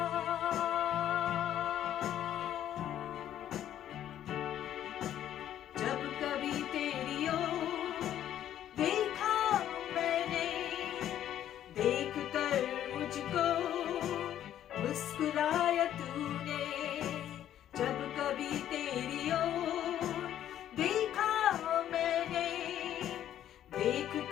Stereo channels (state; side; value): quieter; right; 11.2 dB